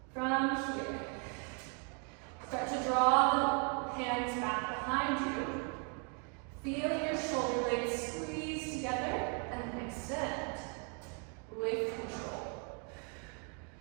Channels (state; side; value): quieter; left; 38.7 dB